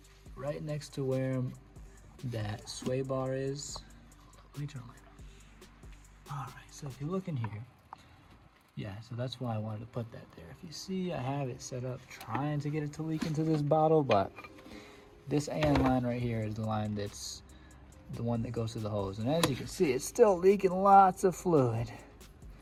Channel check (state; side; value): identical; both; correlation 1.00